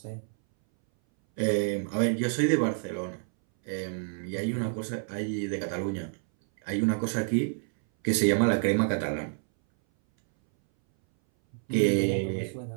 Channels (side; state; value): left; silent; 59 dB below the other